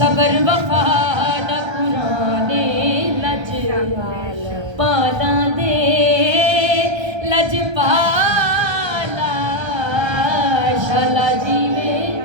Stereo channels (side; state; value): left; late; 1.3 ms